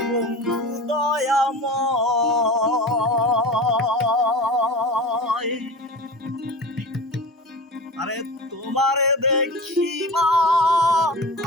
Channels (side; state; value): both; normal; correlation 0.31